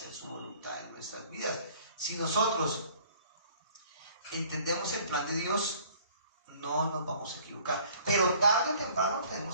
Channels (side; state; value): both; inverted; correlation -0.54